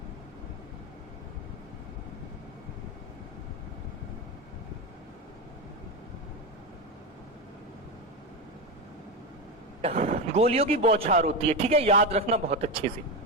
गोलियों की बौछार होती है। ठीक है, याद रखना बहुत अच्छे से।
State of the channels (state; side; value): normal; both; correlation 0.15